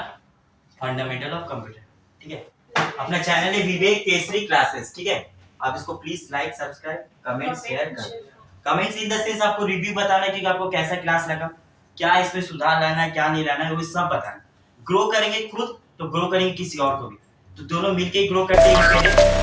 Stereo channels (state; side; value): identical; both; correlation 1.00